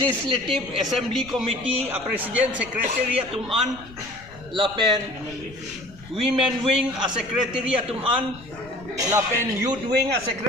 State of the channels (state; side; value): noise; left; rumble, 20 dB below the sound